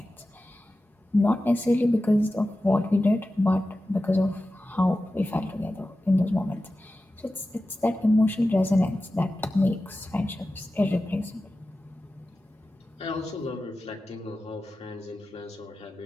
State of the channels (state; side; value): normal; both; correlation 0.94